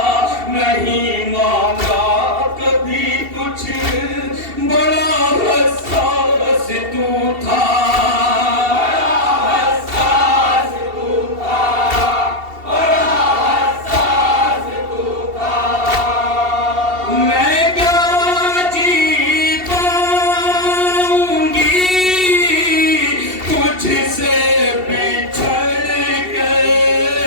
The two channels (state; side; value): late; left; 2.7 ms